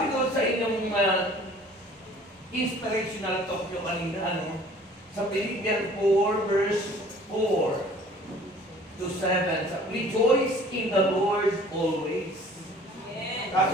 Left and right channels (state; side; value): normal; both; correlation 0.51